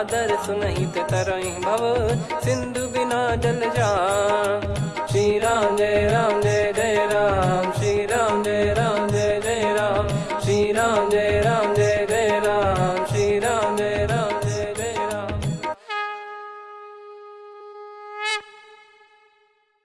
सुनहित तरहि भव, सिंधु बिना जल जान। श्री राम जय जय राम, श्री राम जय जय राम, श्री राम जय जय राम, श्री राम जय जय राम।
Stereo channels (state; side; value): identical; both; correlation 1.00